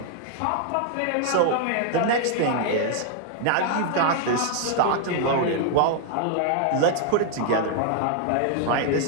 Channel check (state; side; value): different; both; correlation 0.00